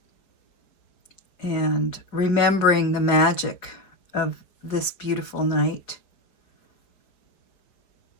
and remembering the magic of this beautiful night.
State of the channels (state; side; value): late; right; 4.9 ms